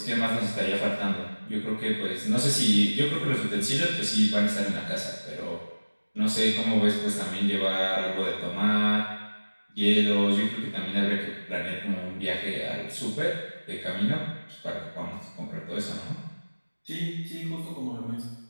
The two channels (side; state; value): both; inverted; correlation -1.00